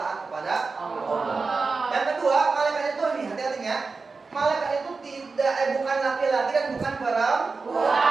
kepada Allah. Yang kedua, malaikat itu nih hati-hatinya, malaikat itu bukan laki-laki dan bukan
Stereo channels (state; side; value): quieter; left; 4.3 dB